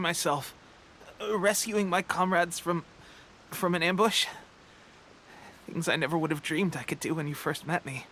rescuing my comrades from an ambush. Things I never would have dreamed I could do when you first met me.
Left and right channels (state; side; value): identical; both; correlation 1.00